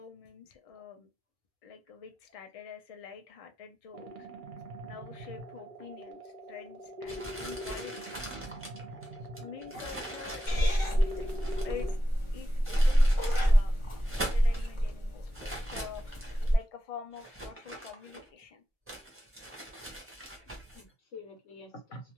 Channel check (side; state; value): both; normal; correlation 0.91